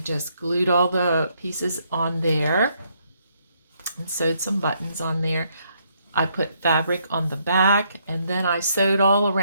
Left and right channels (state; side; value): inverted; both; correlation -0.72